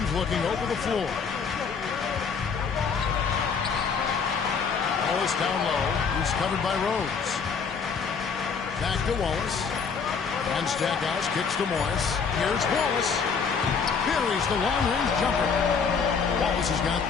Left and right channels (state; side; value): quieter; right; 5.8 dB